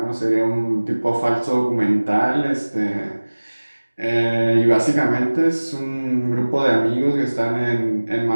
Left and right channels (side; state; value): both; inverted; correlation -1.00